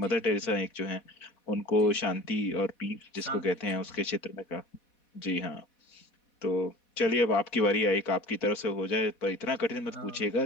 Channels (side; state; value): right; late; 4.1 ms